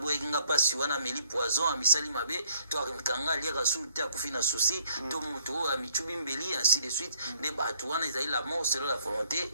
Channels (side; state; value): both; inverted; correlation -0.65